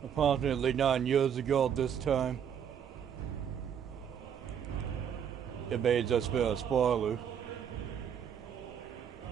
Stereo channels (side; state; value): left; quieter; 8.4 dB